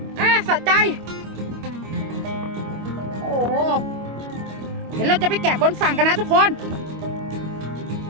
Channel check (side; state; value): left; late; 25 ms